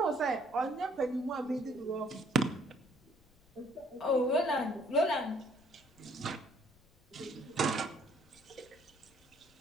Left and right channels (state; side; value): noise; left; rumble, 30 dB below the sound